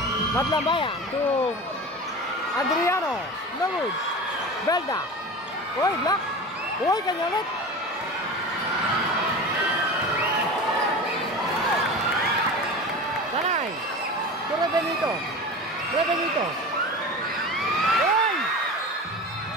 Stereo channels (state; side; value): normal; both; correlation 0.32